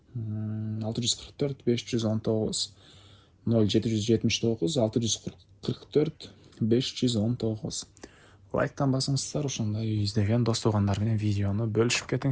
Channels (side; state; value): both; identical; correlation 1.00